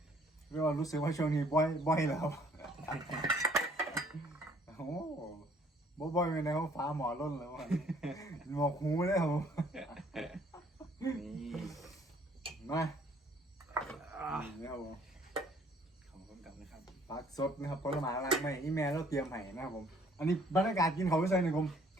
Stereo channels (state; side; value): normal; both; correlation 0.60